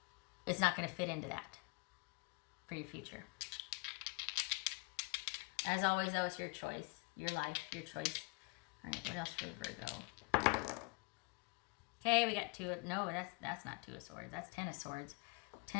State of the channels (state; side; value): quieter; right; 33.3 dB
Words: it's not going to fit into that for your future. As always, though, it's your choice, your life, your choice. All right, what else for Virgo? Okay, we got 2. No, that's not 2 of Swords. That's 10 of Swords.